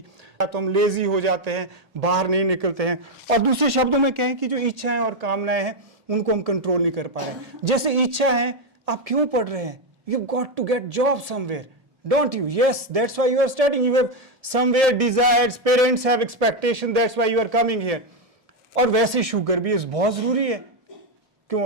तो हम लेजी हो जाते हैं, बाहर नहीं निकलते हैं, और दूसरे शब्दों में कहें कि जो इच्छाएं और कामनाएं हैं उनको हम कंट्रोल नहीं कर पा रहे। जैसे इच्छा है, आप क्यों पढ़ रहे हैं? You got to get job somewhere, don't you? Yes, that's why you are studying, you have somewhere desires, parents have expectation, that's why you are coming here. और वैसे शुगर भी बहुत जरूरी है, क्यों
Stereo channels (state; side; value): late; left; 1.7 ms